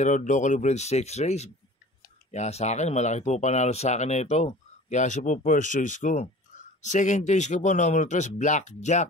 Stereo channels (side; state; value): both; normal; correlation 0.42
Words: locally bred stakes race. Kaya sa akin, malaki po panalo sa akin na ito. Kaya siya po first choice ko. Second choice ko po, number 3,